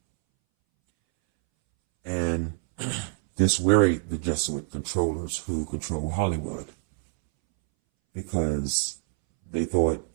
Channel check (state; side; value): silent; left; 61 dB below the other